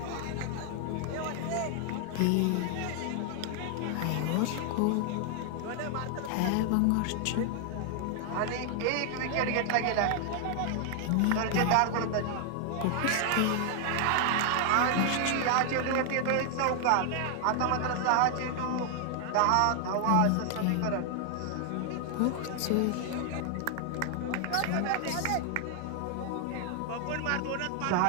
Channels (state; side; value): different; both; correlation 0.00